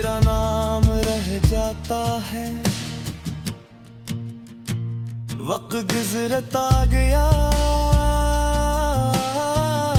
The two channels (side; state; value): both; identical; correlation 1.00